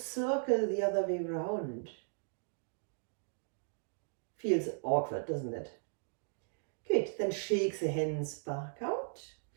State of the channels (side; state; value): left; silent; digital silence